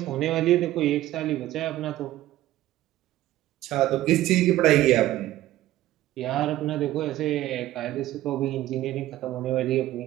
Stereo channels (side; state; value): left; quieter; 14.9 dB